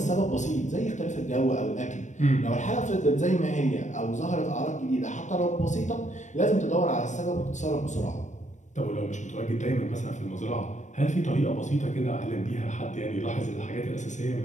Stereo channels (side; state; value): right; late; 0.35 ms